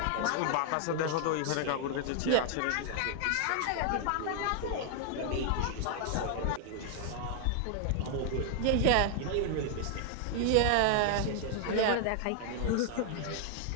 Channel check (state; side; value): different; both; correlation 0.00